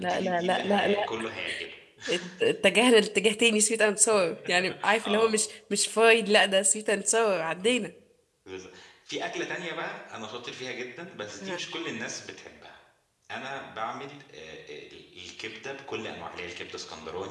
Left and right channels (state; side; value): identical; both; correlation 1.00